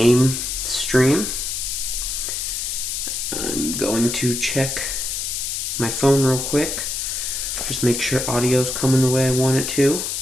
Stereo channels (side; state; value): left; noise; hiss, 2 dB below the sound